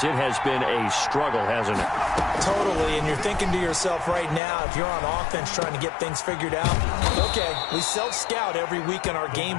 it has been a struggle, hasn't it? Totally, and you're thinking to yourself right now, if you're on offense trying to get things figured out, okay, we self-scout every week in our game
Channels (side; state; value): right; drops out; at 4.4 s